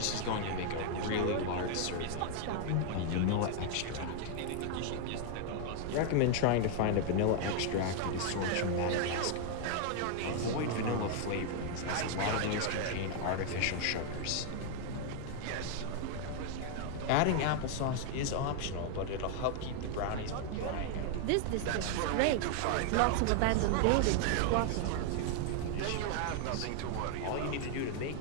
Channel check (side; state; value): both; different; correlation 0.00